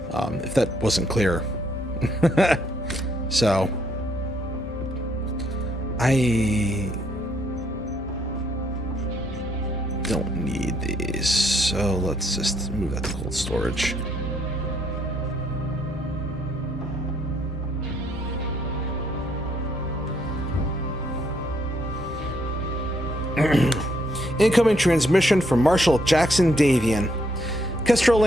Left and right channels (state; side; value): normal; both; correlation 0.72